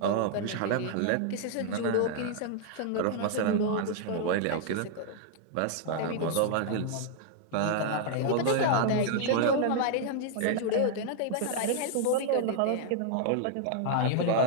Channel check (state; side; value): different; both; correlation 0.00